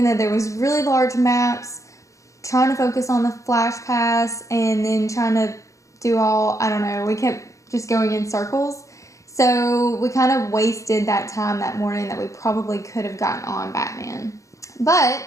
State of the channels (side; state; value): right; late; 0.15 ms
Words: though there was really large maps, trying to focus on the Flash Pass and then trying to do we kept just going in circles. So we kind of wasted that time that morning that we probably could have gotten on Batman.